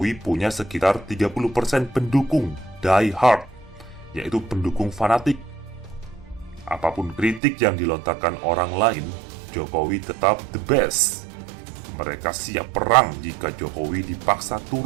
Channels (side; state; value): left; drops out; at 7.4 s